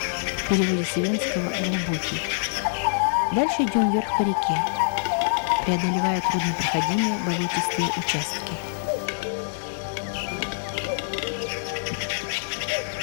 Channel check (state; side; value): silent; right; digital silence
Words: в переводе с ивенского «глубокий». Дальше идем вверх по реке, преодолевая труднопроходимые болотистые участки.